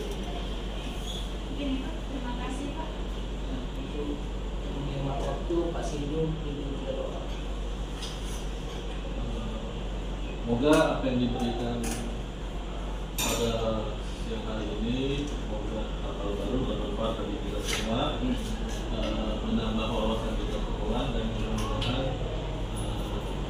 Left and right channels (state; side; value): identical; both; correlation 1.00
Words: Mungkin itu. Terima kasih Pak. Untuk menghemat waktu, Pak Sinjung itu juga doa. Semoga apa yang diberikan pada siang hari ini, semoga hal baru bermanfaat bagi kita semua, menambah wawasan kita semua, dan mudah-mudahan